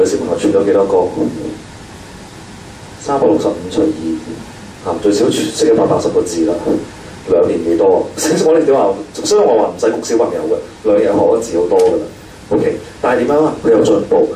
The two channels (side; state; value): both; identical; correlation 1.00